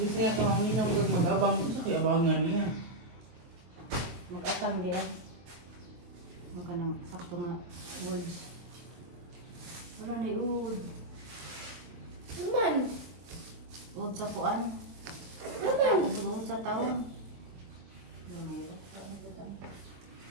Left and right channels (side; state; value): left; late; 23 ms